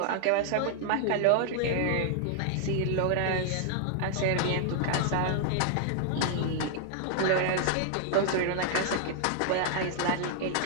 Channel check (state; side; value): different; both; correlation 0.00